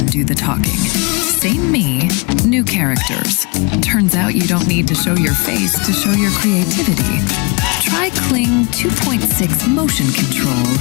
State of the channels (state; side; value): quieter; right; 30.3 dB